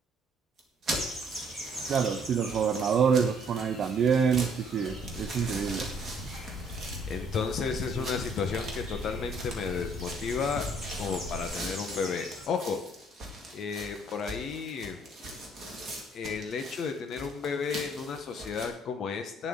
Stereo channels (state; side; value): normal; both; correlation 0.62